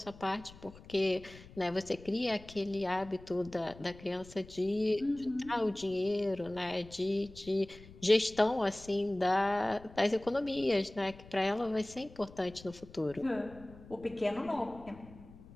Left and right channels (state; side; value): noise; left; rumble, 19 dB below the sound